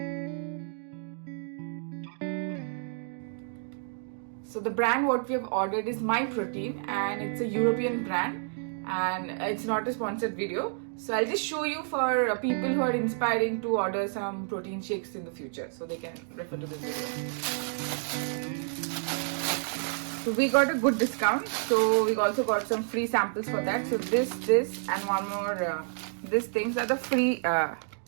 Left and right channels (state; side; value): silent; left; digital silence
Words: So the brand what we have ordered is My Protein, and it's a European brand, and it's not a sponsored video. So I'll just show you for people who are inspiring to order some protein shakes in the future, so they can refer to this video. So we got a good discount, so we also got some free samples for that. So this and one more these things are the free